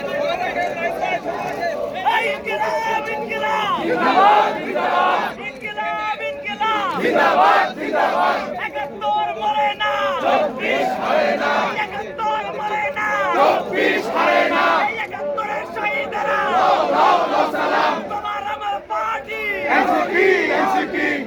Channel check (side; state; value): both; identical; correlation 1.00